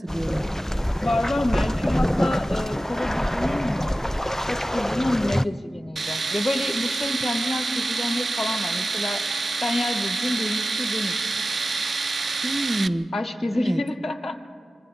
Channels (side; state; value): both; normal; correlation 0.95